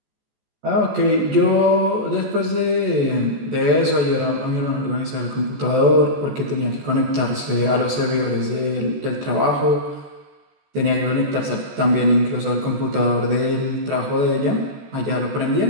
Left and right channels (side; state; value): left; late; 14 ms